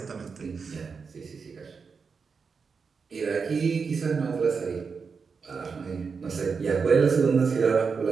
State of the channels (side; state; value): left; quieter; 5.4 dB